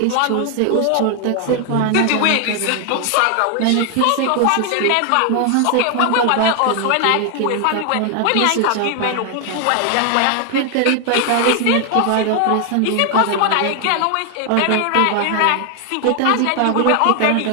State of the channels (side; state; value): both; different; correlation 0.00